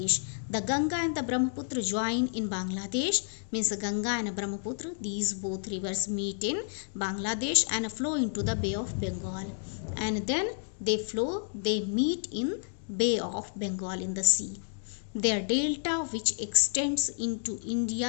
The Ganga and the Brahmaputra join in Bangladesh. Means Ganga and Brahmaputra, these both rivers meet in Bangladesh and flow into the Bay of Bengal. And then they meet in Bay of Bengal in the sea. Their delta, which extends into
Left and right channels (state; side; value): silent; right; 57 dB below the other